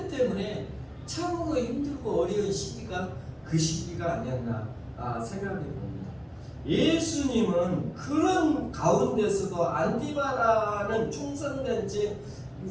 때문에 참으로 힘들고 어려운 시기가 그 시기가 아니었나 생각해 봅니다. 예수님은 그런 가운데서도 안디바라는 충성된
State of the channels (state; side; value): identical; both; correlation 1.00